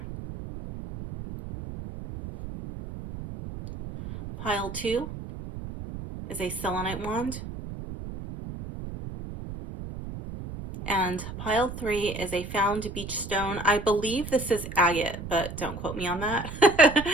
Pile 2 is a selenite wand. And pile 3 is a found beach stone. I believe this is agate, but don't quote me on that.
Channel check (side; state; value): right; noise; rumble, 9 dB below the sound